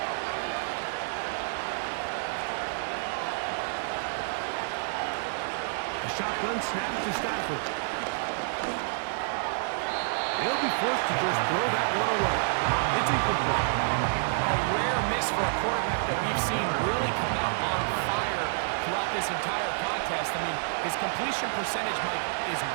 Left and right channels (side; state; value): left; silent; digital silence